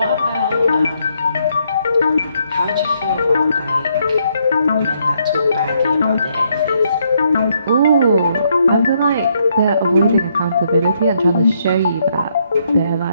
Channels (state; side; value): inverted; both; correlation -0.73